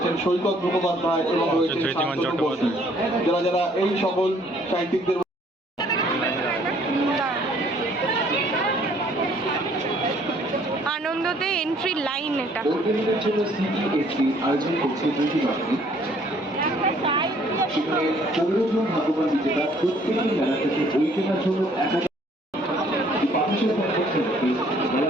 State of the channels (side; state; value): both; normal; correlation 0.61